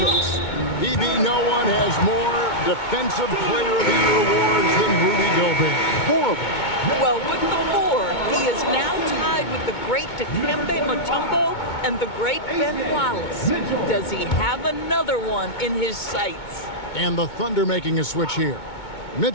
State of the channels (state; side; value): late; right; 2.2 ms